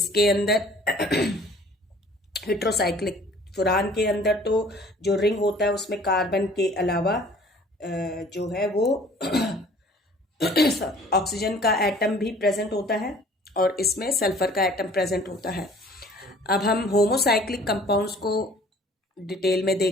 अंदर हेट्रोसाइक्लिक, फुरान के अंदर तो जो रिंग होता है उसमें कार्बन के अलावा जो है वो ऑक्सीजन का एटम भी प्रेजेंट होता है, और इसमें सल्फर का एटम प्रेजेंट होता है। अब हम होमोसाइक्लिक कंपाउंड्स को डिटेल में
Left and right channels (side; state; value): both; normal; correlation 0.52